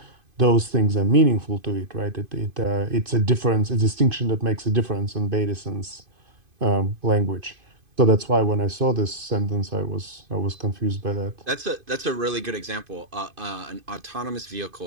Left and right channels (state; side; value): late; left; 2.5 ms